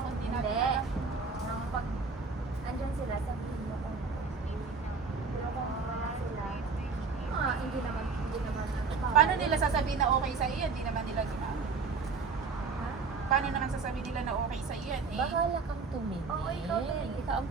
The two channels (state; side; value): quieter; left; 4.7 dB